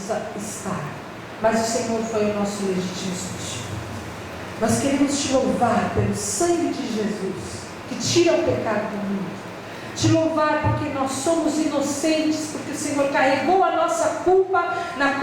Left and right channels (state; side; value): identical; both; correlation 1.00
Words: estar. Mas o Senhor foi o nosso legítimo substituto. Nós queremos te louvar pelo sangue de Jesus, que tira o pecado do mundo. Te louvar porque nós somos inocentes, porque o Senhor carregou a nossa culpa na